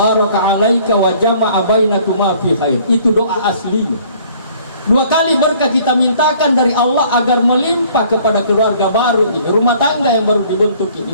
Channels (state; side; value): inverted; both; correlation -0.57